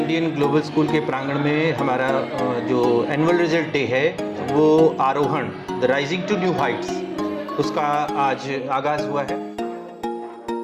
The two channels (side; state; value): both; identical; correlation 1.00